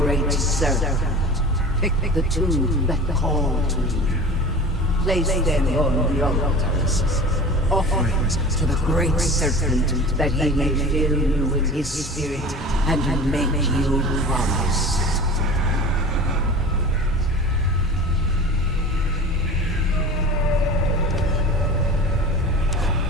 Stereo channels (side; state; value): both; normal; correlation 0.37